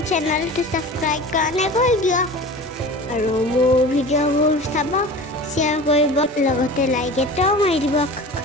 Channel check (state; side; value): normal; both; correlation 0.36